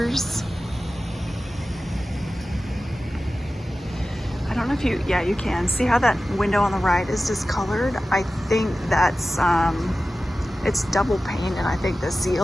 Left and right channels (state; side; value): normal; both; correlation 0.95